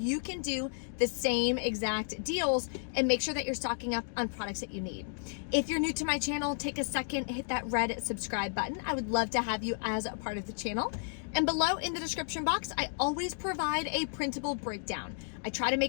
can do the same exact deals and make sure that you're stocking up on products that you need. If you're new to my channel, take a second, hit that red subscribe button. I would love to have you as a part of the channel. And below in the description box, I always provide a printable breakdown. I try to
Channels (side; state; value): right; silent; digital silence